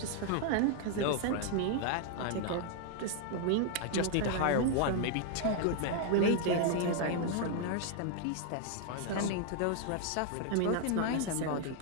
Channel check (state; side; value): different; both; correlation 0.00